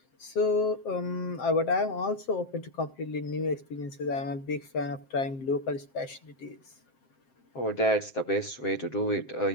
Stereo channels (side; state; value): right; late; 7.6 ms